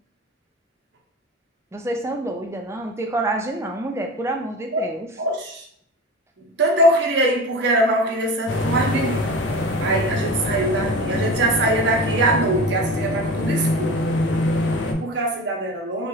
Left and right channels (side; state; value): both; normal; correlation 0.33